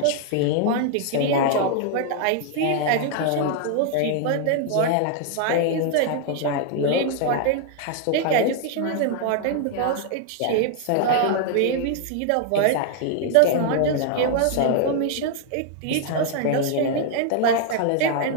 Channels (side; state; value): both; different; correlation 0.00